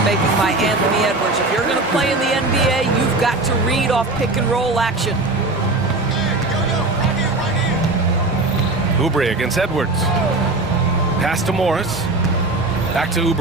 making by Anthony Edwards. If you're going to play in the NBA, you've got to read off pick and roll action. Oubre against Edwards. Pass to Morris. Back to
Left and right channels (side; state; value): left; quieter; 3.1 dB